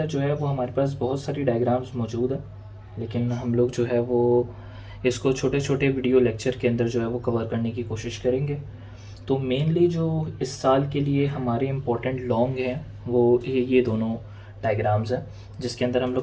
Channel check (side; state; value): both; identical; correlation 1.00